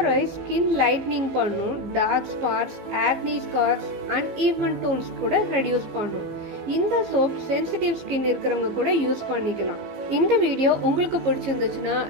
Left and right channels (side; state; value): left; late; 15 ms